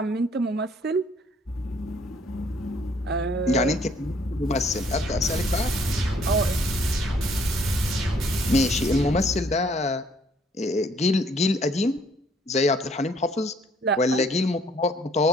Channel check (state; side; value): normal; both; correlation 0.63